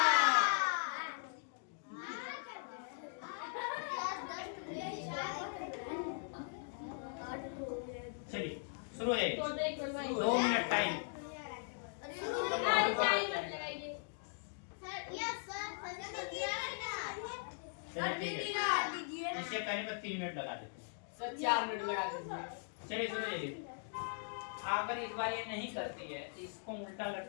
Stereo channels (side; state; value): right; silent; digital silence